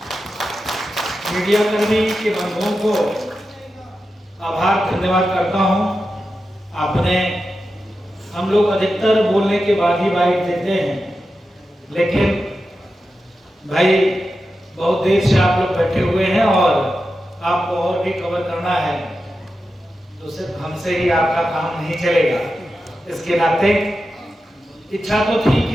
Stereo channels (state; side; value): normal; both; correlation 0.91